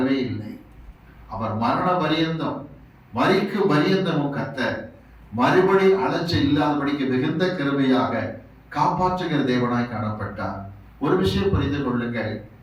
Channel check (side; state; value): both; identical; correlation 1.00